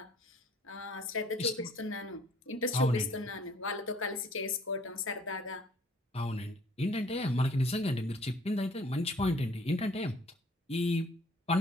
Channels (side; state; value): both; normal; correlation 0.58